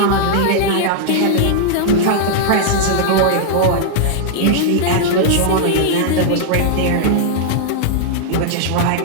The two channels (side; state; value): both; different; correlation -0.01